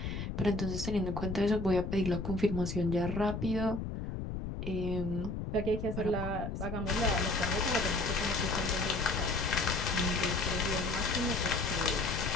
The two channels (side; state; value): left; noise; rumble, 5 dB below the sound